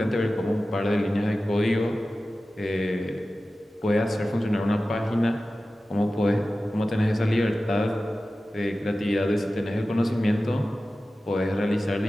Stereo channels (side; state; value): both; normal; correlation 0.95